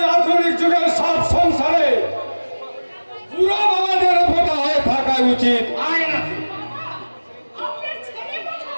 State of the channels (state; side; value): inverted; both; correlation -1.00